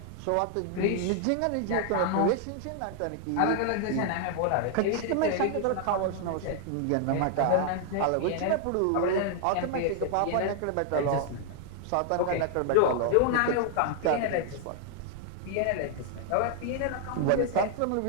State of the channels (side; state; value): both; different; correlation 0.00